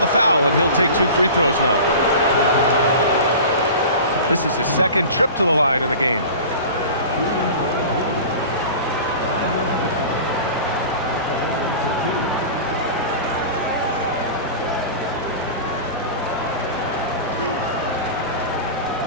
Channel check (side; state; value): both; inverted; correlation -0.36